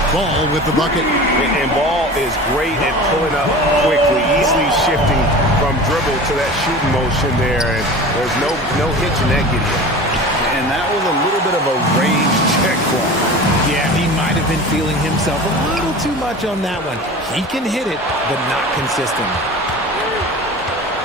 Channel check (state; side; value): normal; both; correlation 0.36